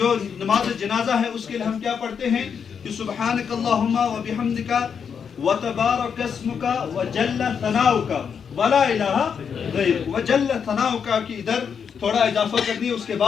نماز جنازہ ہے اس کے لیے ہم کیا پڑھتے ہیں کہ سبحانک اللہم و بحمدک و تبارک اسمک و جل ثناؤک و لا الہ غیرک، و جل ثناؤک کی ادھر تھوڑا اضافہ کر دیا، اس کے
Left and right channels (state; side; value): quieter; right; 6.9 dB